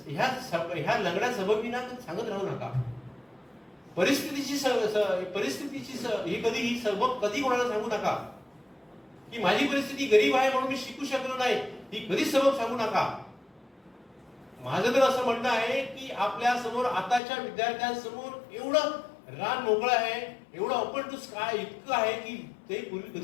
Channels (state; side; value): drops out; right; at 17.2 s